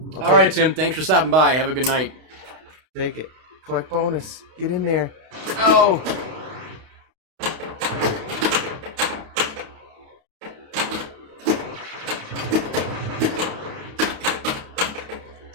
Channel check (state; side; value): late; left; 32 ms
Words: All right, Tim. Thanks for stopping by. Have a good night. Take it. Collect bonus. Get in there. Oh.